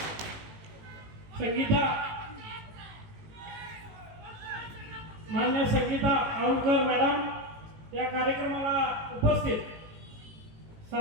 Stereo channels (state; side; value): late; left; 18 ms